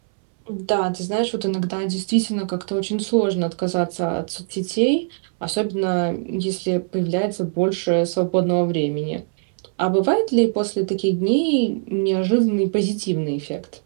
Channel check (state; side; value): silent; left; 64 dB below the other